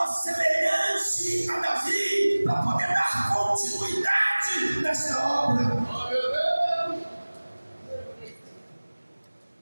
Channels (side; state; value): both; inverted; correlation -1.00